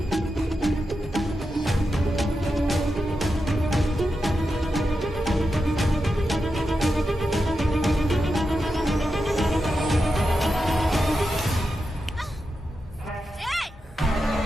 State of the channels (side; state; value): both; normal; correlation 0.89